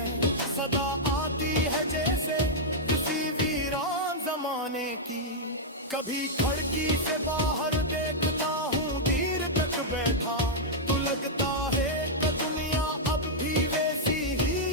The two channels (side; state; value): both; normal; correlation -0.06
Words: सदा आती है जैसे किसी वीरान जमाने की। कभी खिड़की से बाहर देखता हूँ देर तक बैठा, तो लगता है कि दुनिया अब भी वैसी